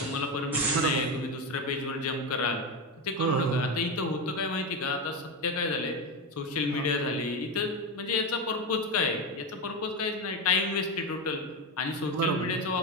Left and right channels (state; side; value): normal; both; correlation 0.15